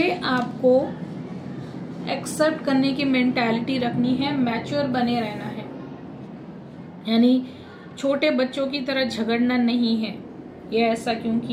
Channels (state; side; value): identical; both; correlation 1.00